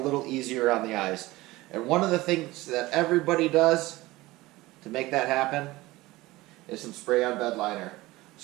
easier on the eyes. And one of the things that everybody does to make that happen is some spray on Bedliner.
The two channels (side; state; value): left; quieter; 19.5 dB